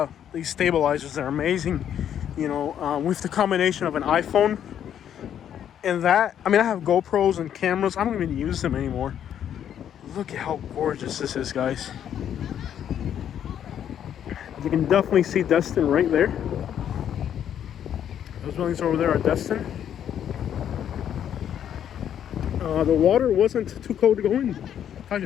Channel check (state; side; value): quieter; right; 9.6 dB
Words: these stabilizers. They're amazing, with the combination of an iPhone and that. I mean, I have GoPros and cameras. I don't even use them anymore. Look at how gorgeous this is, guys. You can definitely see Destin right there. Those buildings over there are Destin. The water wasn't too cold to go in.